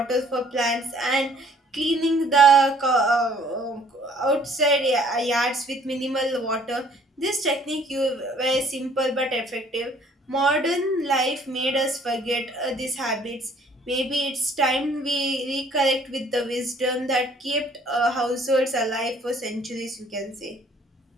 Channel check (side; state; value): both; normal; correlation 0.58